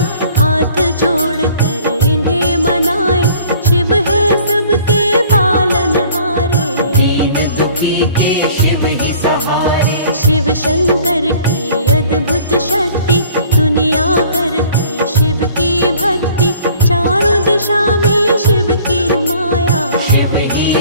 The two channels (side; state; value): both; inverted; correlation -0.53